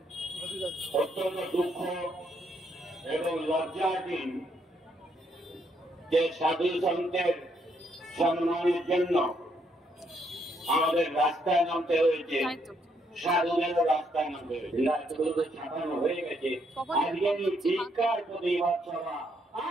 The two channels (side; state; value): both; normal; correlation 0.73